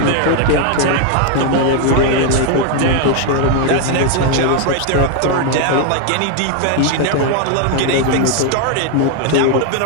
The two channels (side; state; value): both; different; correlation 0.01